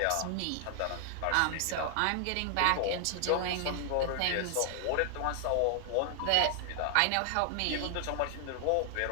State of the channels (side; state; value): both; different; correlation 0.00